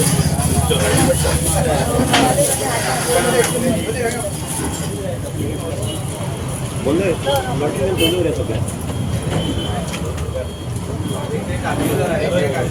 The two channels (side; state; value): both; identical; correlation 1.00